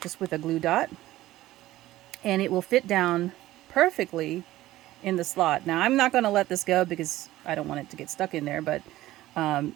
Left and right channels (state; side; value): quieter; left; 15.8 dB